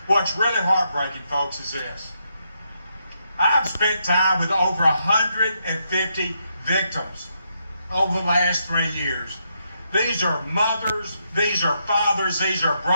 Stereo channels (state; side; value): inverted; both; correlation -0.80